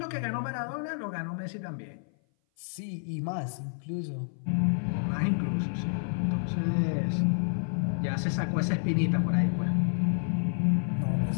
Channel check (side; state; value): right; silent; 56 dB below the other